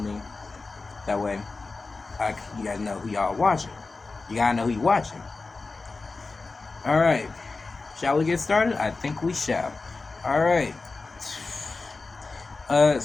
That way, you guys know who y'all watching. You gotta know who you watching. Alright, shall we get started? I think we shall. Alright.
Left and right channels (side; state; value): right; quieter; 3.8 dB